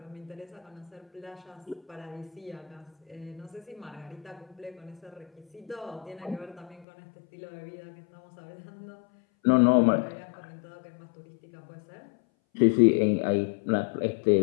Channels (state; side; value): drops out; right; at 6.9 s